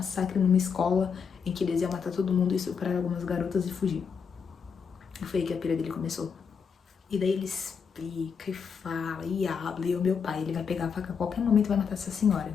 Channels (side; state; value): right; quieter; 6.3 dB